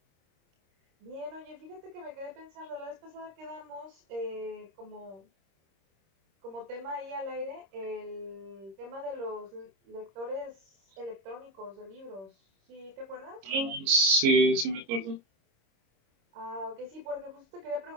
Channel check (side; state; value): left; late; 26 ms